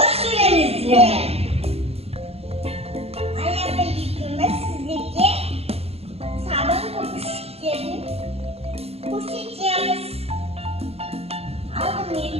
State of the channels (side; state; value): left; late; 0.29 ms